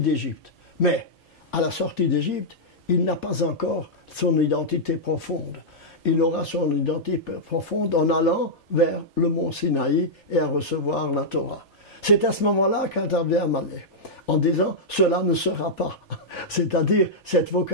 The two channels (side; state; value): both; normal; correlation -0.08